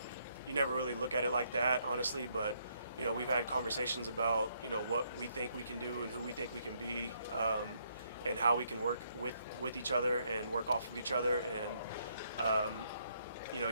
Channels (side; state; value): both; inverted; correlation -0.73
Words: you never really look at it like that, honestly, but we've had conversations about what we think we can do and who we think we can be, and how we can work with each other and work off of each other. And